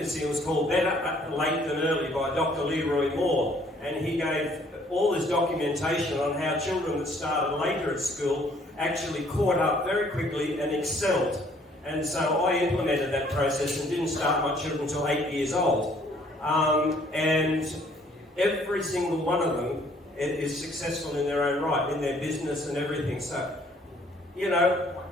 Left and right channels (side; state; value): both; normal; correlation 0.61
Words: It was called Better Late Than Early by Dr. Leroy Moore, and he gave all this documentation on how children that started later at school actually caught up very quickly and excelled. And so I implemented that process and didn't start my children until 8 years old. And every single one of them is successful in their own right, in their business and everything. So, you know,